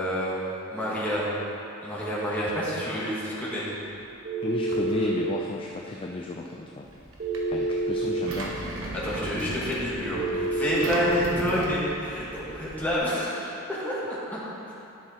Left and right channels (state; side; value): normal; both; correlation 0.36